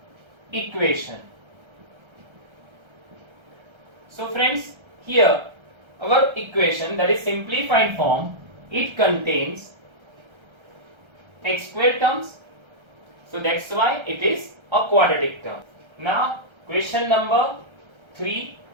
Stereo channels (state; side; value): late; left; 1.3 ms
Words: equation. So friends, here our equation, that is simplified form, it contains x square terms, so that's why it is a quadratic term. Now question number 3,